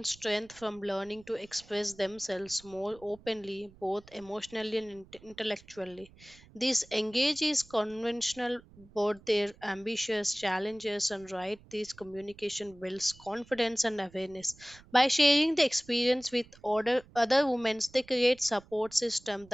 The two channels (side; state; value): right; noise; rumble, 24 dB below the sound